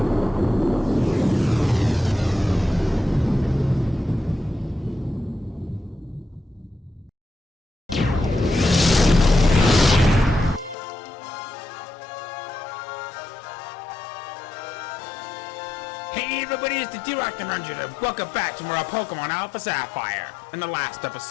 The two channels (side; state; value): right; drops out; at 10.8 s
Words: Hey everybody, it's the D-Rock and Ranger, and welcome back to more Pokemon Alpha Sapphire. In the last